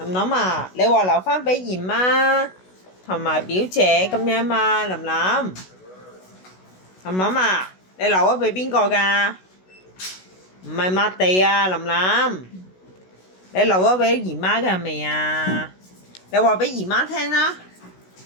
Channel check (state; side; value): late; right; 16 ms